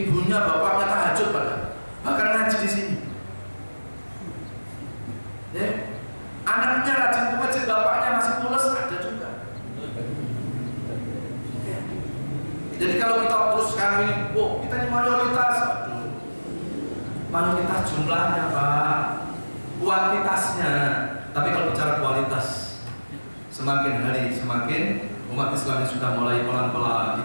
bapaknya tahajud bahkan ngaji di sini. Ya. Anaknya rajin ke masjid, bapaknya masih pulas, ada juga. Ya. Jadi kalau kita terus sekarang ini, kita ini mayoritas. Mayoritas jumlahnya Pak, kuantitasnya. Tapi kalau bicara kualitas, semakin hari semakin umat Islam yang sudah mulai pelan-pelan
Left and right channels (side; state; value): both; inverted; correlation -1.00